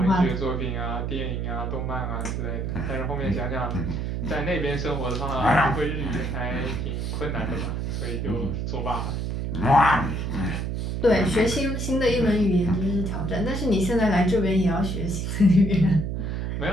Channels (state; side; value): noise; right; hum, 2 dB below the sound